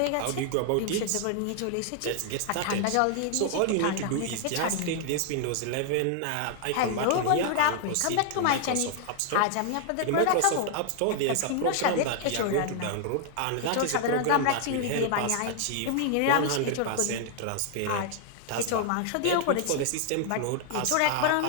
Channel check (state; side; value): different; both; correlation 0.00